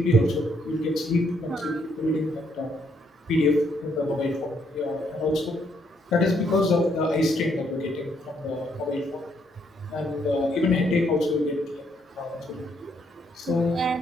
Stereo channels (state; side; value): normal; both; correlation 0.72